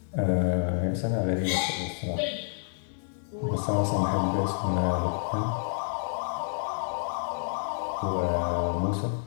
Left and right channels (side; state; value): right; silent; digital silence